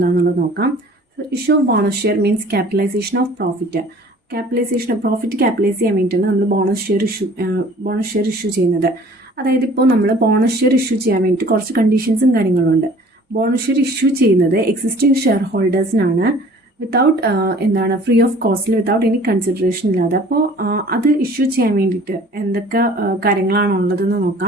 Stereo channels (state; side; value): normal; both; correlation 0.50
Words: നോക്കാം. Issue of bonus share means capitalisation of profit. Profit capitalise ചെയ്യാൻ വേണ്ടിയിട്ടാണ് നമ്മൾ ബോണസ് ഷെയർ ഇഷ്യൂ ചെയ്യുന്നത്. അതായത് ഇപ്പോൾ നമ്മൾ ബോണസ് ഷെയർ ഇഷ്യൂ ചെയ്യാൻ വേണ്ടിയിട്ട് കുറച്ച് കണ്ടീഷൻസും കാര്യങ്ങളുണ്ട്. ബോണസ് ഷെയർ ഇഷ്യൂ ചെയ്യുന്നത് എക്സിസ്റ്റിംഗ് ഷെയർ ഹോൾഡേഴ്സിനാണ്, വിത്തൗട്ട് ഫ്രീ ഓഫ് കോസ്റ്റിൽ, വിത്തൗട്ട് എനി കൺസിഡറേഷൻ ഇല്ലാതെ. അപ്പോൾ അത് ഇഷ്യൂ ചെയ്യാൻ വേണ്ടിയിട്ട് എന്തൊക്കെ കാര്യങ്ങളാണുള്ളതെന്ന്